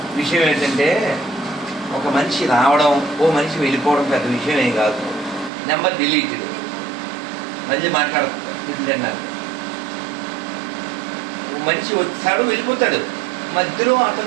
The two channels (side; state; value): left; drops out; at 5.5 s